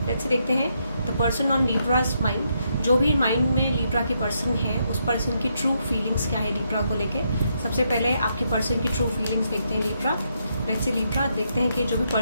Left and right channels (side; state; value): both; inverted; correlation -0.78